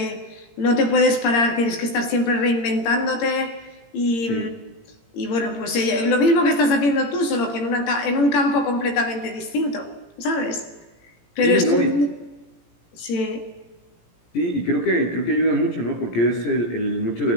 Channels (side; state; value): right; late; 17 ms